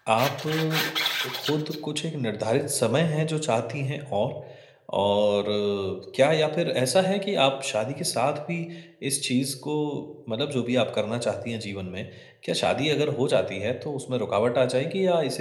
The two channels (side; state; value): both; identical; correlation 1.00